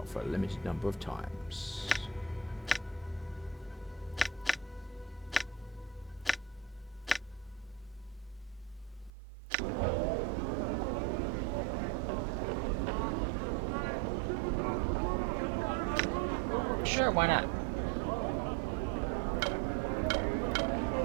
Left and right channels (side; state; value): left; drops out; at 9.1 s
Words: for a limited number of times. Sure, why not?